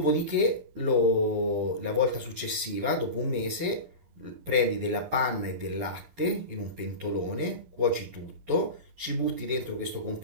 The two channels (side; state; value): left; late; 11 ms